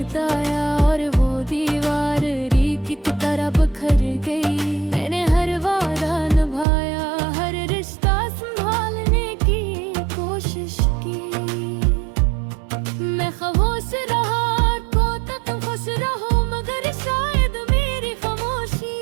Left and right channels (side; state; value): left; drops out; at 6.7 s